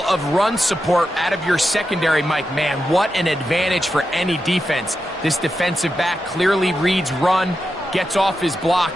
of run support out of your secondary, Mike, man, what an advantage for any defense. This defensive back clearly reads run, gets off his block,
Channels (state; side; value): normal; both; correlation 0.88